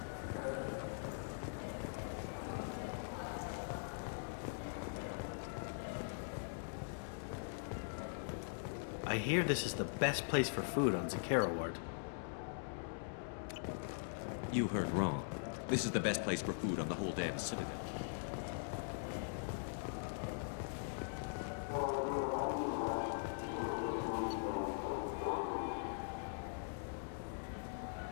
I hear this is the best place for food on Zakera Ward. You heard wrong. This is the best place for food on the whole damn Citadel.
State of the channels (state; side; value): silent; right; digital silence